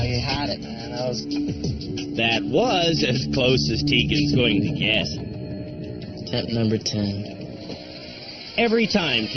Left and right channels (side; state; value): both; identical; correlation 1.00